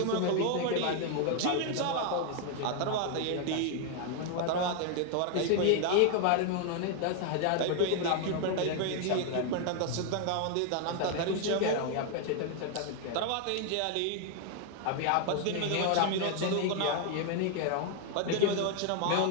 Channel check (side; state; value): both; different; correlation 0.00